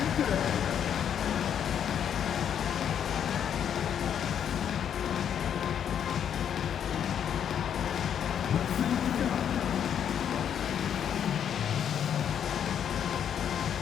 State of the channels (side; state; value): right; quieter; 8.8 dB